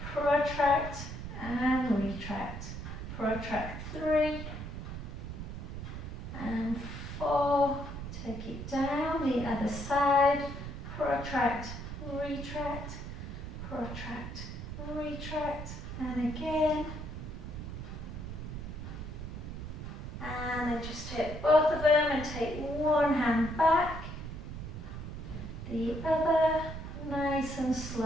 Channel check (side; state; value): right; noise; rumble, 7 dB below the sound